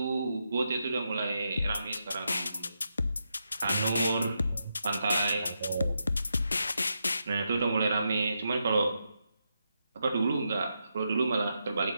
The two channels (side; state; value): both; inverted; correlation -0.83